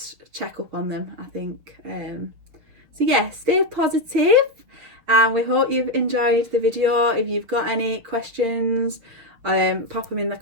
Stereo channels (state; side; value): late; left; 6.8 ms